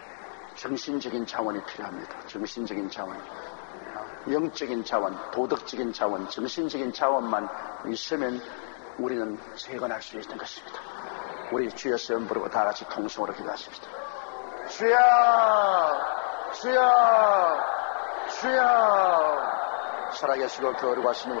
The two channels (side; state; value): right; silent; digital silence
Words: 정신적인 자원이 필요합니다. 정신적인 자원. 영적인 자원, 도덕적인 자원, 정신적인 자원만 있으면 우리는 재건할 수 있는 것입니다. 우리 주여 시험 부르고 다 같이 통성으로 기도하십시다. 주여, 주여, 주여. 살아계시고 거룩하신